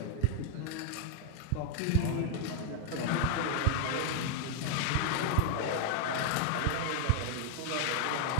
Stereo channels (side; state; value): both; different; correlation 0.00